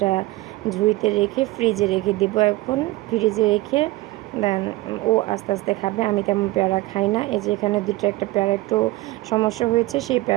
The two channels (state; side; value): quieter; left; 19.3 dB